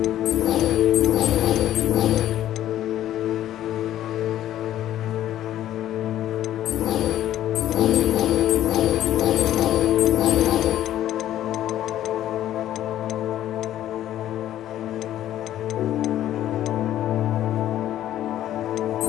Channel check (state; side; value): quieter; right; 12.5 dB